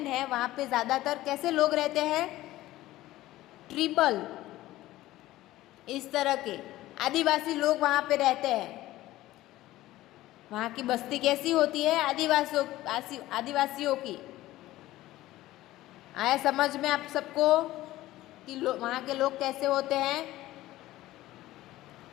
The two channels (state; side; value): quieter; right; 16.2 dB